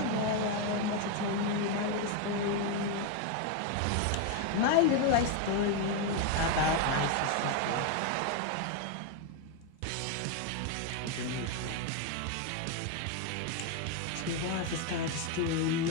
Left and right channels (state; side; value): different; both; correlation 0.01